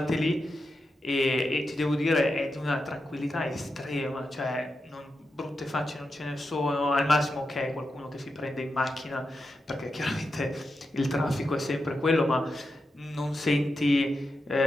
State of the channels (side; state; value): both; normal; correlation 0.88